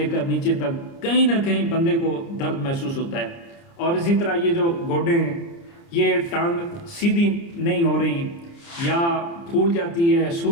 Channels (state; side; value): late; right; 29 ms